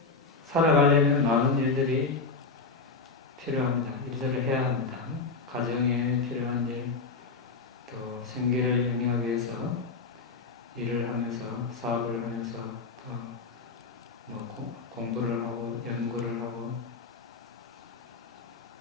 살아가려면 많은 일들이 필요합니다. 일들을 해야 합니다. 가정에 필요한 일, 또 생계를 영위하기 위해서 일을 하면서, 사업을 하면서, 또 공부를 하고, 연구를 하고,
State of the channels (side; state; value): right; quieter; 4.3 dB